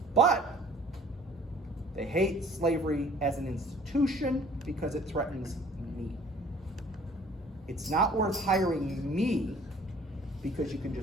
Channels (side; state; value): both; normal; correlation 0.53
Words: But they hate slavery as an institution because it threatens me. It's not worth hiring me because you can